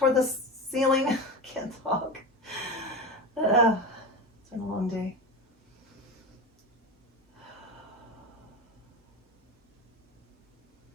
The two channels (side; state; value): both; normal; correlation 0.24